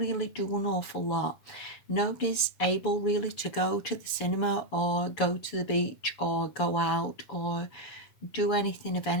do an awful lot. Nobody's able really to go to the cinema or go to the beach or go out or do anything of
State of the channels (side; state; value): right; late; 7.0 ms